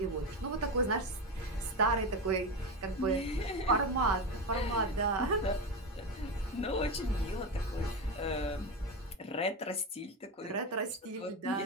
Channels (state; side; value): normal; both; correlation 0.17